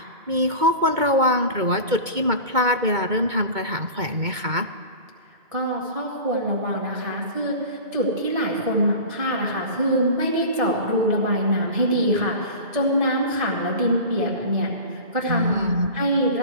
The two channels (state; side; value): late; left; 2.2 ms